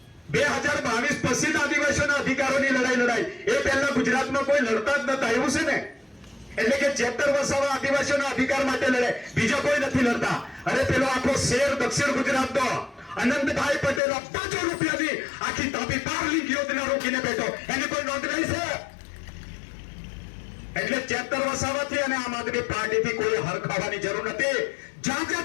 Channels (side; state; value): right; drops out; at 14.0 s